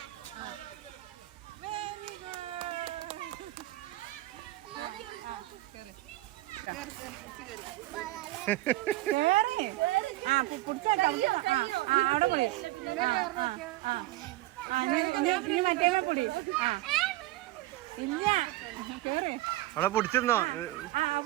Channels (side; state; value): left; quieter; 17.8 dB